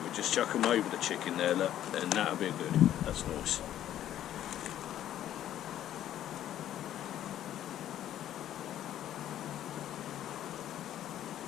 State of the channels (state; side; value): quieter; right; 11.7 dB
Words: just chuck them over the chicken there, look, and that'll be good. That's nice.